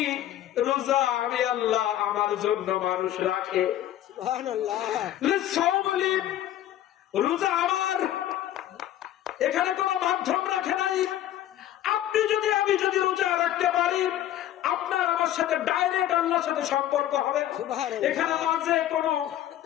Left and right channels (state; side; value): quieter; right; 12.4 dB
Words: রোজা আমি আল্লাহ আমার জন্য মানুষ রাখে। রোজা আমার, এখানে কোন মাধ্যম রাখে নাই। আপনি যদি, আমি যদি রোজা রাখতে পারি, আপনার আমার সাথে ডাইরেক্ট আল্লাহর সাথে সম্পর্ক হবে। এখানে মাঝে কোনো